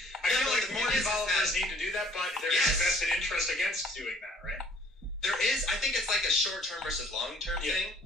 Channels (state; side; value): normal; both; correlation 0.57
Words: I feel like more developers need to do that, but there's a vested interest against doing that, right? There is. I think it's like a short-term versus long-term thing.